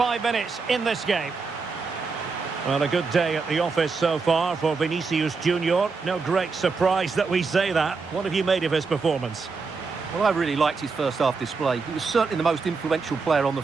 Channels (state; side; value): quieter; left; 4.6 dB